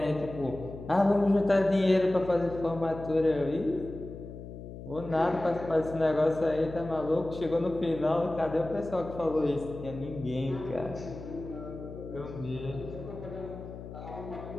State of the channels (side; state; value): left; noise; hum, 12 dB below the sound